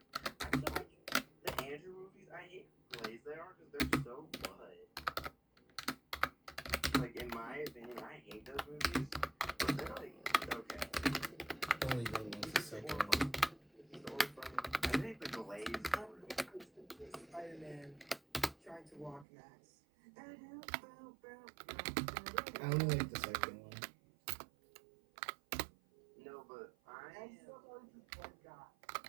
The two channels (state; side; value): drops out; left; at 19.2 s